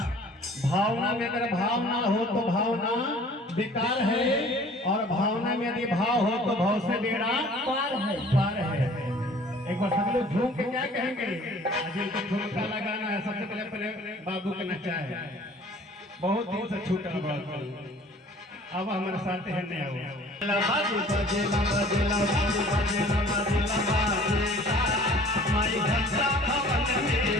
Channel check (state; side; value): normal; both; correlation 0.51